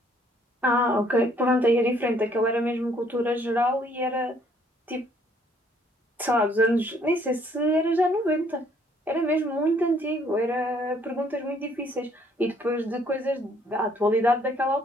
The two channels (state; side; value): normal; both; correlation 0.64